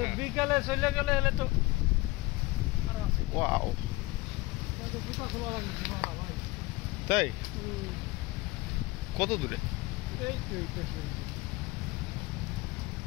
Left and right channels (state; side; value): quieter; right; 21.0 dB